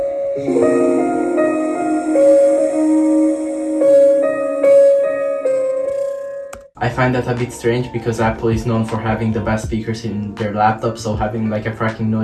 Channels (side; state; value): both; identical; correlation 1.00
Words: I find that a bit strange because Apple is known for having the best speakers in their laptop, so having like a cracking